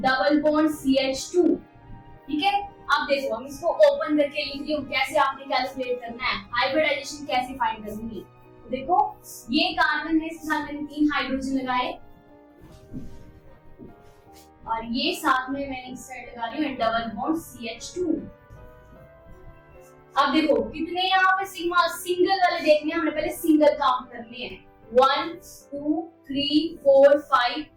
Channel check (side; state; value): both; identical; correlation 1.00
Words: bond CH2, ठीक है। अब देखो हम इसको ओपन करके लिख रही हूँ, कैसे आपने कैलकुलेट करना है, हाइब्रिडाइजेशन कैसे फाइंड करूंगी। तो देखो ये कार्बन है, इसके साथ मैंने 3 हाइड्रोजन लगाए, और ये साथ में मैंने इस साइड लगा रही हूँ डबल बॉन्ड CH2। अब देखो कितने यहाँ पे सिग्मा सिंगल वाले देखने हैं, हमने पहले सिंगल काउंट करने हैं, 1 2 3 4 5